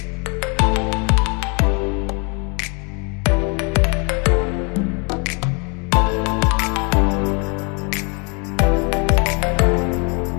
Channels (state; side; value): quieter; right; 33.7 dB